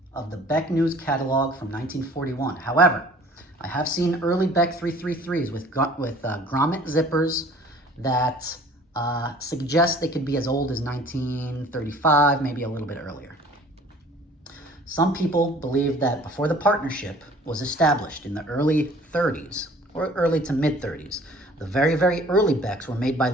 of the Beck News catalog from 1941. However, I have seen early Beck 333s with grommet zippers that suggest they could be as old as 1935, maybe a little bit earlier. Some people believe that before the partnership was established in the early 30s, or early to mid 30s, the very, very early Becks were made by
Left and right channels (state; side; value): normal; both; correlation 0.51